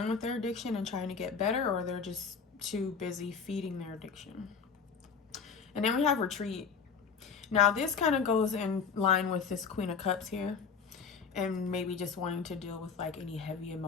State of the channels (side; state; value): right; quieter; 5.9 dB